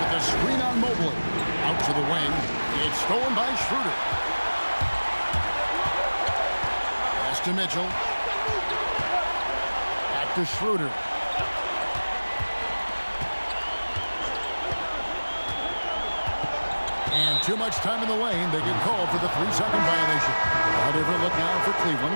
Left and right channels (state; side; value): inverted; both; correlation -1.00